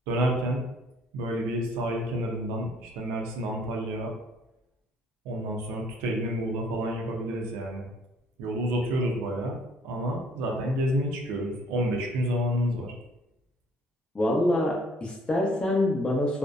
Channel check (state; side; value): normal; both; correlation 0.61